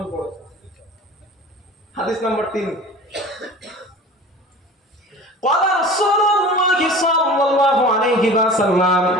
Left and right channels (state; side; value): normal; both; correlation 0.39